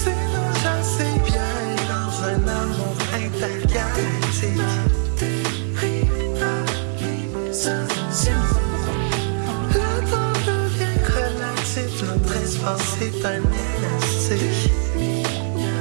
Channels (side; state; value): left; silent; digital silence